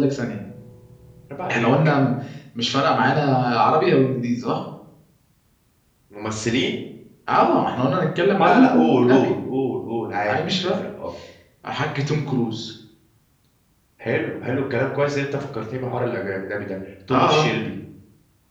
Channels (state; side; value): identical; both; correlation 1.00